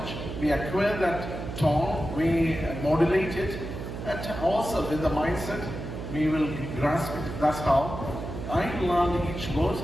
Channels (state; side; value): noise; right; hum, 8 dB below the sound